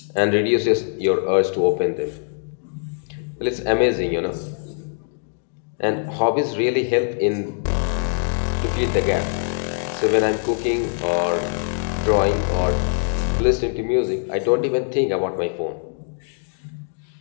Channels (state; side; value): silent; right; digital silence